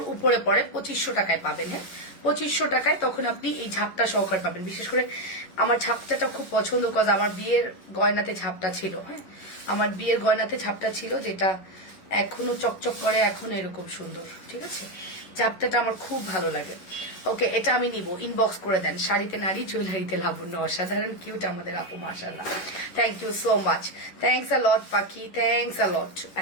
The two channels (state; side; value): late; right; 11 ms